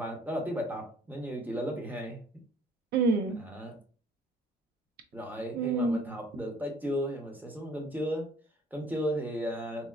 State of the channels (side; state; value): both; normal; correlation 0.55